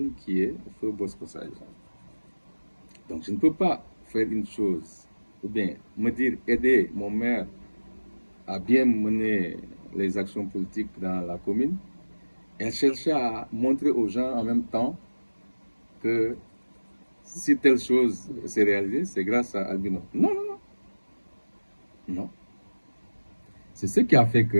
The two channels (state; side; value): inverted; both; correlation -1.00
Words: qui est Feu Bosco Sadio. Donc je ne peux pas faire une chose, ou bien me dire aider mon maire à bien mener les actions politiques dans la commune et chercher à montrer aux gens en même temps que si telle chose s'est réalisée, c'est grâce à Albino. Non, non, non. Non. C'est ce qui a fait